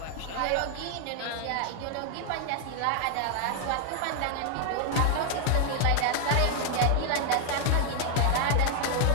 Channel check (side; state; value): both; different; correlation 0.00